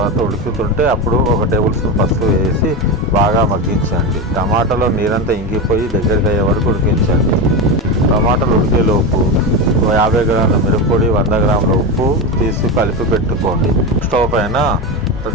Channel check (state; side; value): normal; both; correlation 0.17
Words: ఉడుకుతుంటే అప్పుడు 1 టేబుల్ స్పూన్ పసుపు వేసి బాగా మగ్గించండి. టమాటాలో నీరంతా ఇంకిపోయి దగ్గరికి అయ్యే వరకు ఉడికించండి. టమాటాలు ఉడికేలోపు 50 గ్రాముల మిరప్పొడి, 100 గ్రాముల ఉప్పు తీసి కలిపి పెట్టుకోండి. స్టవ్ పైన